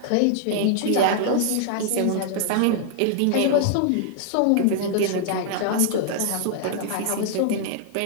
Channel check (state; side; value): different; both; correlation -0.01